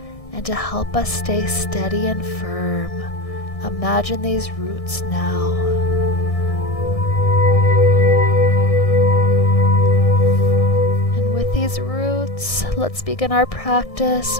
and to help us stay steady and firm. Imagine these roots now. And with these roots, let's begin our practice.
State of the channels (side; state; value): right; late; 1.6 ms